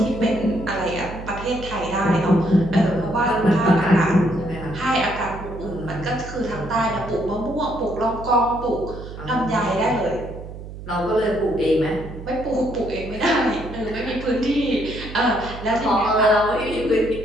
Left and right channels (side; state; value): right; noise; hum, 12 dB below the sound